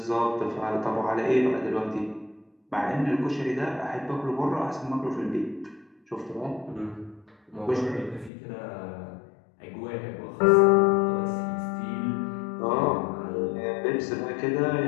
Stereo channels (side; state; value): right; drops out; at 8.3 s